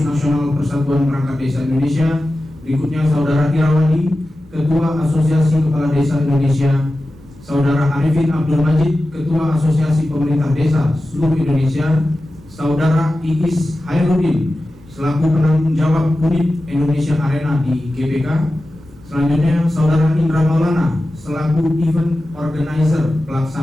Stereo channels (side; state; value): both; normal; correlation 0.94